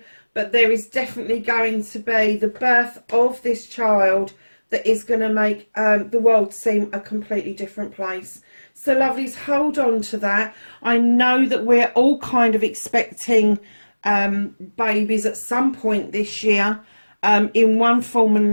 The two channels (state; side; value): inverted; both; correlation -1.00